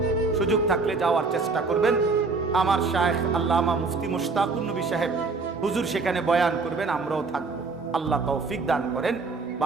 সুযোগ থাকলে যাওয়ার চেষ্টা করবেন। আমার শায়েখ আল্লামা মুফতি মুশতাকুর নবী সাহেব হুজুর সেখানে বয়ান করবেন, আমরাও থাকবো। আল্লাহ তৌফিক দান করেন।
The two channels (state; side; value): quieter; left; 4.1 dB